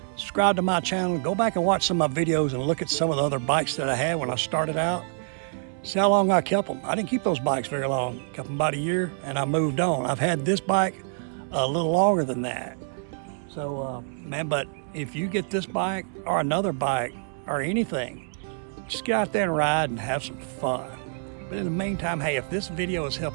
subscribe to my channel, go back and watch some of my videos and look at some of the other bikes that I had when I started out. See how long I kept them. I didn't keep those bikes very long. Kept them about a year and I moved on. I've had this bike a little longer than that. So, man, but if you get this bike or another bike or anything, just get out there and ride and have some fun. But in the meantime, hey, if this video has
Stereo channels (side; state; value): left; silent; 61 dB below the other